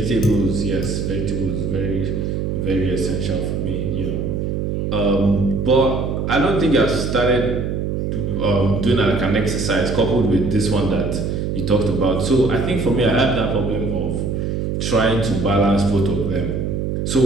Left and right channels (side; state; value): right; noise; hum, 1 dB below the sound